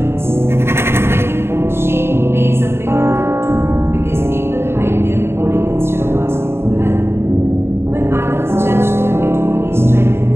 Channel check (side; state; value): left; late; 0.12 ms